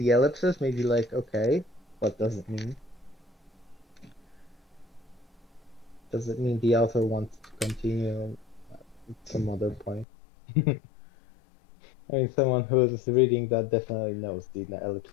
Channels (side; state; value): right; drops out; at 10.1 s